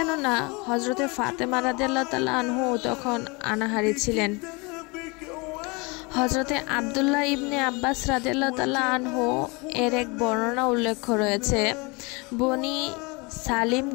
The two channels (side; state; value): right; quieter; 27.7 dB